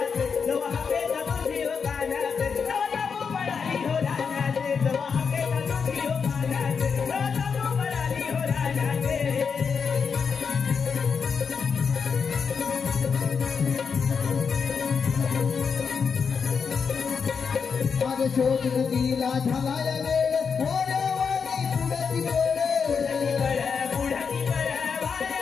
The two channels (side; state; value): right; quieter; 6.0 dB